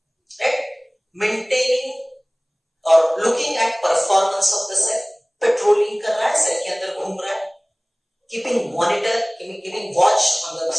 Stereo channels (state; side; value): identical; both; correlation 1.00